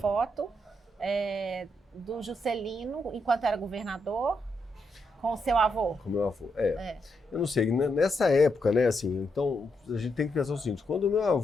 do Juscelino, enquanto era governador, com o seu avô. Com o meu avô, Eu não sei, nessa época, né, assim, então a gente tem que pensar o seguinte, quando o meu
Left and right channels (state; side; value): normal; both; correlation 0.81